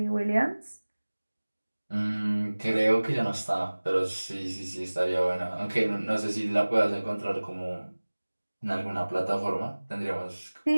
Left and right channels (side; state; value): both; inverted; correlation -1.00